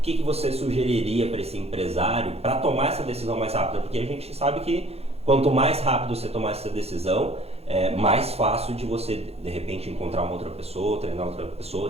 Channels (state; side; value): late; left; 0.29 ms